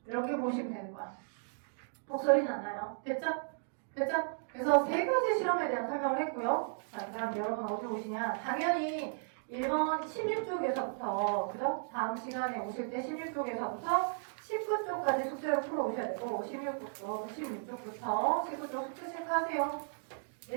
이렇게 보시면 되는 거야. 독소리 나나요? 됐죠? 됐죠? 그래서 세 가지 실험에 대한 설명을 했고요. 자, 그럼 여러분 어디 오시냐? 당연히 1번 16쪽에서부터, 그죠? 다음 시간에 오실 때 16쪽에서부터 19쪽까지 숙제를 풀어오셔야 되고, 16쪽부터 19쪽 숙제 체크하세요.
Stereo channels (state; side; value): silent; left; digital silence